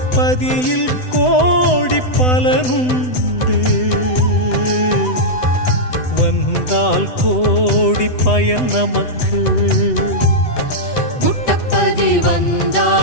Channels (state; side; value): late; right; 8.0 ms